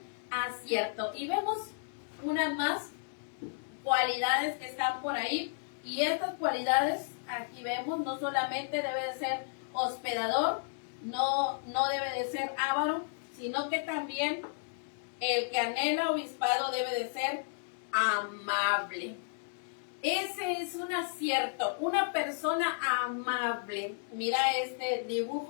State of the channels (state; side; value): silent; right; digital silence